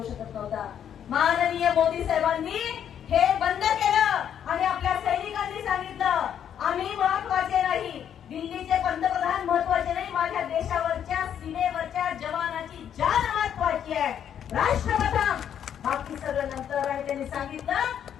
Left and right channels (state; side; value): quieter; right; 9.2 dB